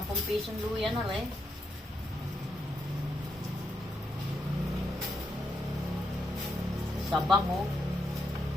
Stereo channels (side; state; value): both; normal; correlation 0.81